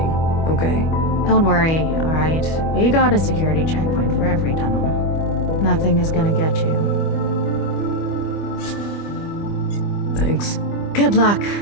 okay? Don't worry, all right? We got a security checkpoint for every tunnel. Nothing is gonna get you. Thanks. Good luck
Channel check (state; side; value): late; right; 25 ms